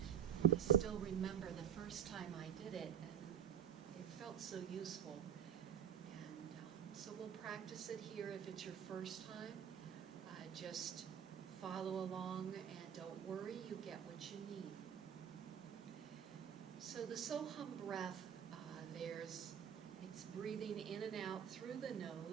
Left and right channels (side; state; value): left; quieter; 9.1 dB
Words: I still remember the first time I did it, and it felt so useful. And so we'll practice it here if it's your first time. Just follow along and don't worry, you get what you need. So the Soham breath, it's breathing in and out through the